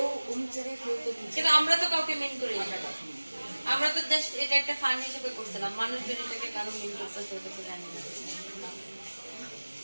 অমুক জায়গায় কেউ তো কিন্তু আমরা তো কাউকে মেন করি আমরা তো জাস্ট এটা একটা ফান হিসেবে করছিলাম মানুষজন এটাকে কারো মেন করতেছে ওটা তো জানি না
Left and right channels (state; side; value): inverted; both; correlation -1.00